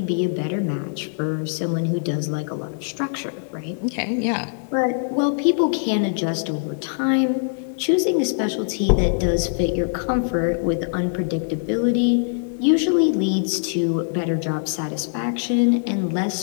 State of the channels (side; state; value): right; silent; digital silence